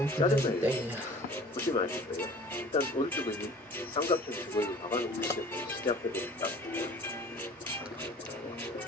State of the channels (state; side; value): normal; both; correlation 0.46